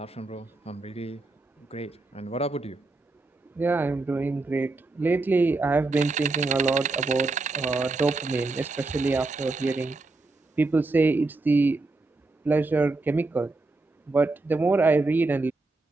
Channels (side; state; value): left; quieter; 3.3 dB